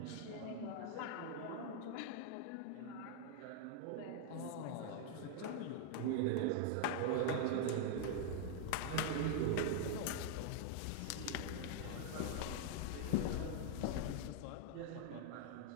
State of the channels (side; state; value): both; different; correlation 0.00